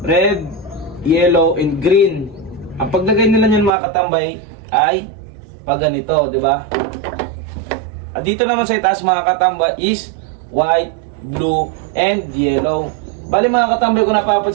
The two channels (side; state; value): left; drops out; at 3.7 s